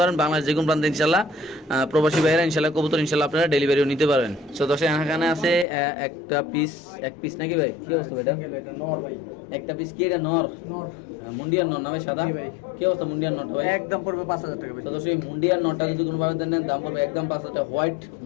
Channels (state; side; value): drops out; right; at 5.7 s